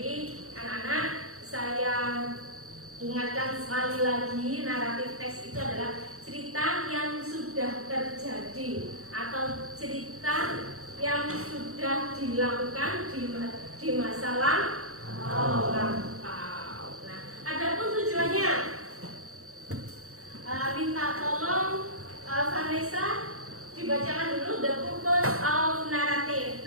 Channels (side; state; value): left; late; 0.64 ms